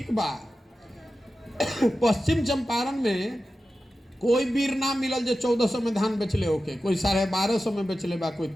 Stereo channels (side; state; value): both; normal; correlation 0.93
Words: बा। पश्चिम चंपारण में कोई वीर ना मिलल जो 1400 में धान बेचले होके, कोई 1250 में बेचले बा, कोई